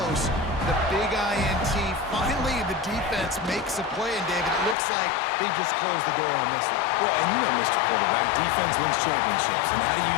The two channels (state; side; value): drops out; right; at 4.8 s